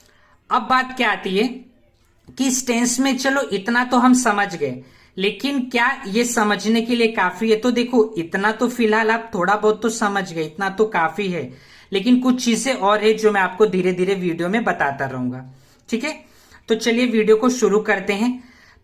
अब बात क्या आती है कि इस टेंस में चलो इतना तो हम समझ गए, लेकिन क्या ये समझने के लिए काफी है? तो देखो, इतना तो फिलहाल आप थोड़ा बहुत तो समझ गए, इतना तो काफी है, लेकिन कुछ चीजें और है जो मैं आपको धीरे धीरे वीडियो में बताता रहूंगा। ठीक है, तो चलिए वीडियो को शुरू करते हैं।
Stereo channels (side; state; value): both; identical; correlation 1.00